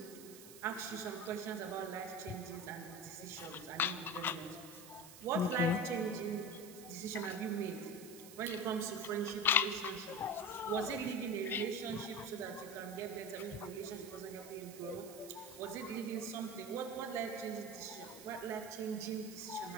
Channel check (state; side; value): noise; right; hiss, 15 dB below the sound